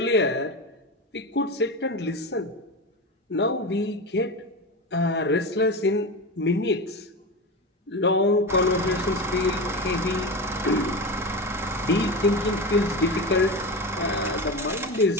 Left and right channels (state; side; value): normal; both; correlation 0.22